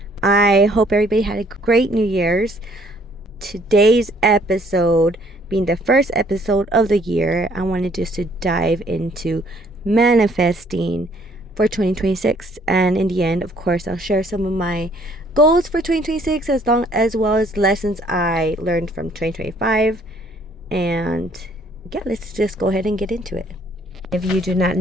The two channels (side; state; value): both; normal; correlation 0.62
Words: I hope everybody had a great New Year's. Today's episode, being the first episode of the year, I wanted just to dive into manifesting for 2026, and in the end, of course, I'll share some of my goals for 2026 as well as lessons I learned from 2025. And yeah, let's just go ahead and get into it. If you do not